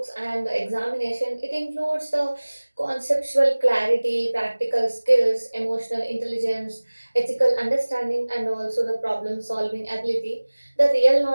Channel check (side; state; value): both; inverted; correlation -1.00